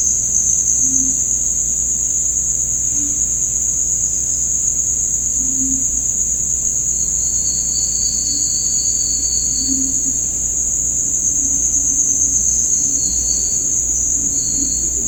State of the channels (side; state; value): right; noise; hum, 11 dB below the sound